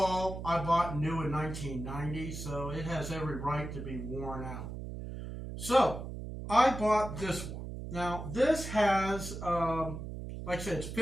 I bought new in 1990, so it has every right to be worn out. So I bought this one. Now this has, like I said, it's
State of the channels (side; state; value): right; noise; hum, 8 dB below the sound